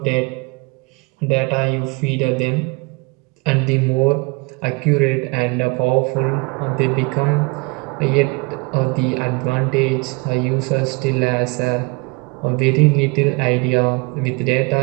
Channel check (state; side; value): quieter; left; 28.7 dB